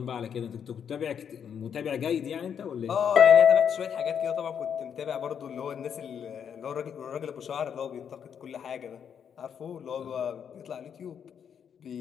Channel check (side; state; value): right; quieter; 7.9 dB